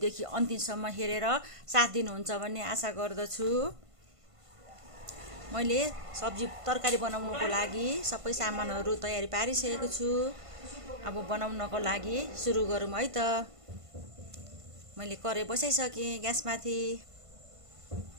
अन्तिमसम्म हेरेर साथ दिनुहुन्छ भन्ने आशा गर्दछु। मैले सब्जी तरकारी बनाउनको लागि सबै सामानहरु तयारी पारिसकेको छु। अब बनाउनको लागि सुरु गरौँ है त। मैले कराई बसाइसके ग्यासमाथि।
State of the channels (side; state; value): left; late; 1.5 ms